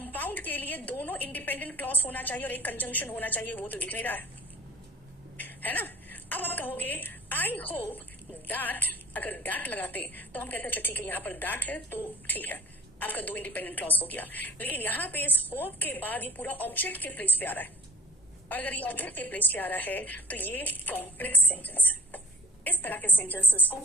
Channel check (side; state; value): both; normal; correlation 0.45